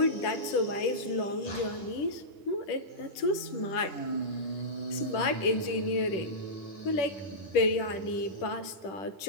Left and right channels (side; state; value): right; late; 10 ms